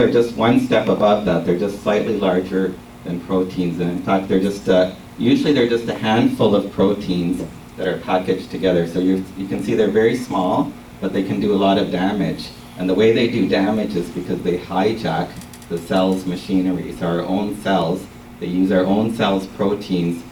just one step above that. They're just slightly larger than proteins. And in fact, usually they're just a handful of proteins that are packaged together. So you can see they're very small, but they can do a lot of damage. And the way they do damage is because they hijack the cell's machinery. So our own cells, they use our own cells' proteins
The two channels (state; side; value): identical; both; correlation 1.00